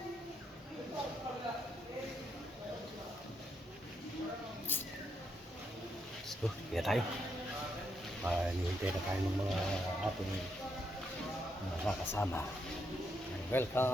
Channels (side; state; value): both; normal; correlation 0.78